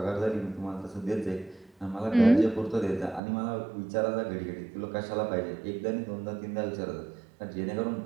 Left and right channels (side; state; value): left; drops out; at 3.2 s